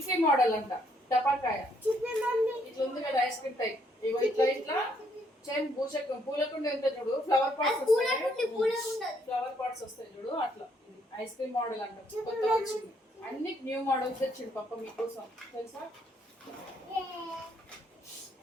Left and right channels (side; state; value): both; normal; correlation 0.70